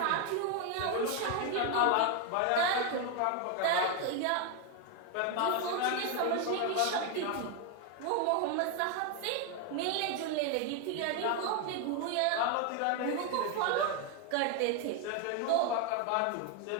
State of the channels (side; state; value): both; different; correlation 0.01